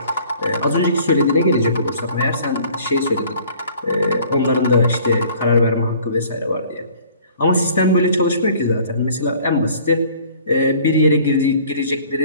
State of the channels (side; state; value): both; inverted; correlation -0.53